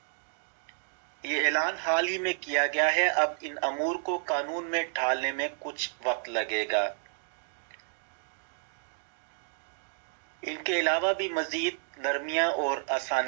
ये ऐलान हाल ही में किया गया है। अब इन अमूर को कानून में ढालने में कुछ वक्त लगेगा। इनके अलावा भी मज़ीद नरमियाँ और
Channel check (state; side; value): silent; left; 57 dB below the other